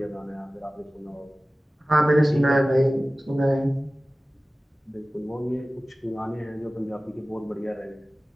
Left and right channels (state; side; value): normal; both; correlation 0.96